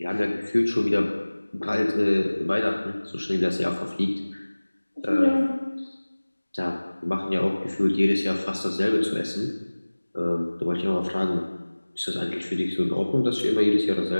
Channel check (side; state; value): both; inverted; correlation -1.00